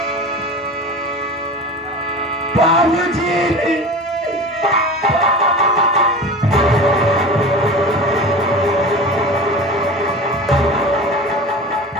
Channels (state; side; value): normal; both; correlation 0.33